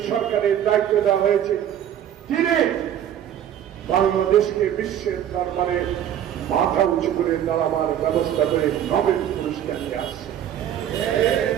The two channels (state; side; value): quieter; left; 10.4 dB